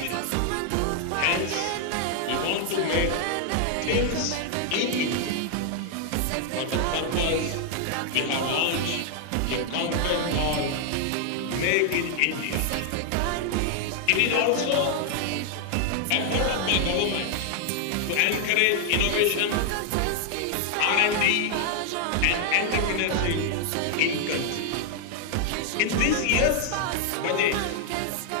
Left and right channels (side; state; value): both; different; correlation 0.00